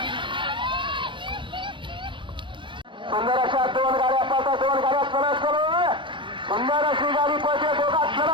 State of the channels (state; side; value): late; left; 0.24 ms